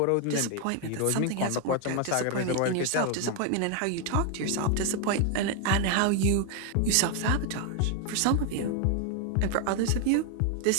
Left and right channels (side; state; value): both; different; correlation 0.01